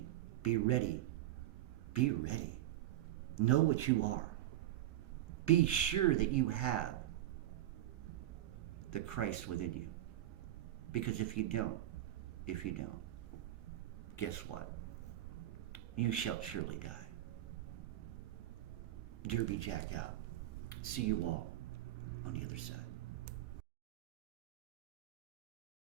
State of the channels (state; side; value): quieter; left; 14.0 dB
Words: Be ready. Be ready. Know what you are. Be sure that you have the Christ within you. Because if you don't, guess what? You shall surely die. Derby Jack out. See you all on the other side.